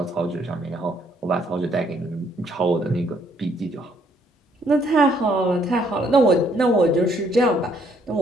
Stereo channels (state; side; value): normal; both; correlation 0.67